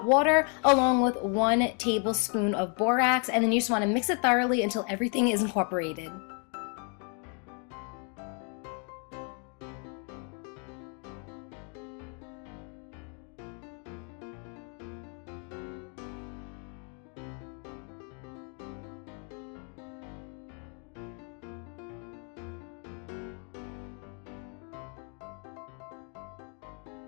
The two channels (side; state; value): right; quieter; 39.2 dB